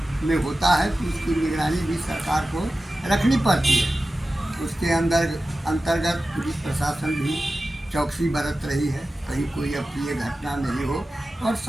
में होता है तो उसकी निगरानी भी सरकार को रखनी पड़ती है। उसके अंतर्गत पुलिस प्रशासन भी चौकसी बरत रही है, कहीं कोई अप्रिय घटना नहीं हो और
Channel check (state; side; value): normal; both; correlation 0.95